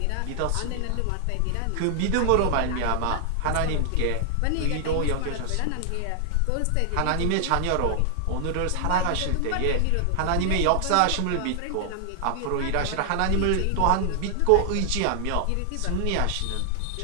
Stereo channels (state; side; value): different; both; correlation 0.00